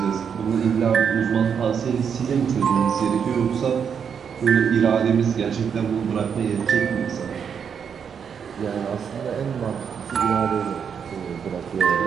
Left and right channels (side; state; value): left; quieter; 7.2 dB